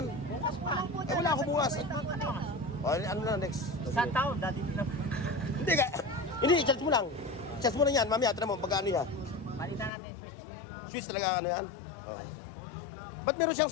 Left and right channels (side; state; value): right; drops out; at 9.9 s